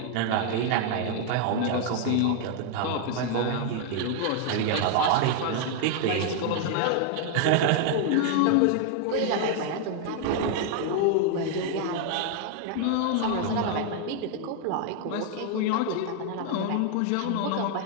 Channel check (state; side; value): different; both; correlation 0.00